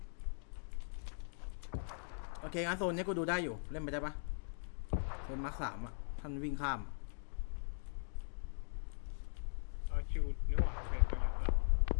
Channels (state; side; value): silent; right; digital silence